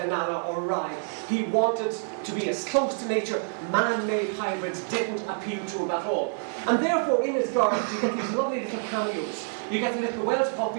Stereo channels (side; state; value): left; silent; 60 dB below the other